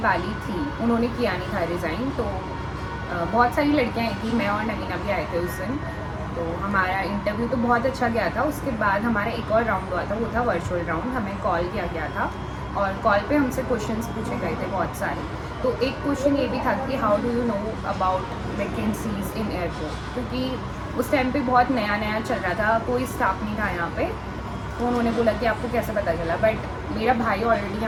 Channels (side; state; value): both; identical; correlation 1.00